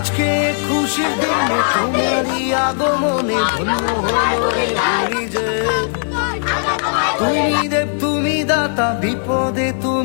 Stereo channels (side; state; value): right; silent; digital silence